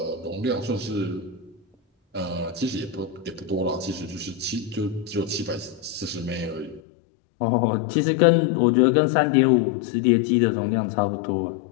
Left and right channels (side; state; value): right; drops out; at 6.8 s